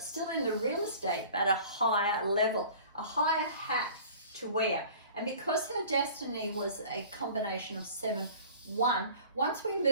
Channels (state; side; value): inverted; both; correlation -0.45